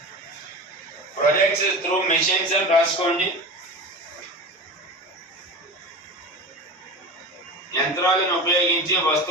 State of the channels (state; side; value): normal; both; correlation 0.29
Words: ప్రొడక్ట్స్ త్రూ మిషన్స్ అని రాసుకోండి. యంత్రాలను ఉపయోగించి